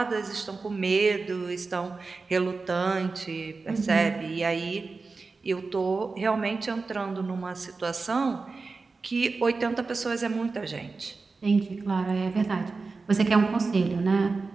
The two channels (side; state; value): left; quieter; 4.1 dB